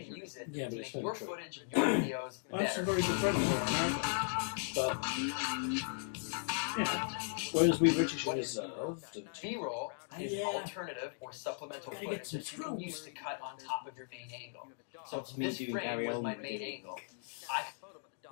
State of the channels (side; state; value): right; silent; digital silence